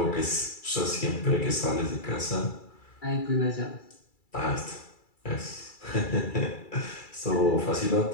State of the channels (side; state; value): right; late; 2.3 ms